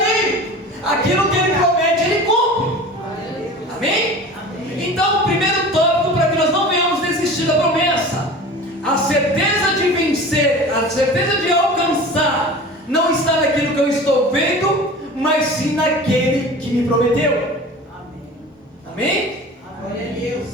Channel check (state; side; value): normal; both; correlation 0.37